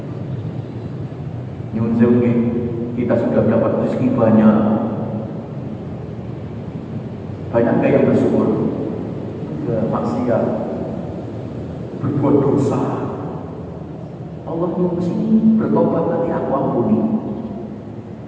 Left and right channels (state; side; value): identical; both; correlation 1.00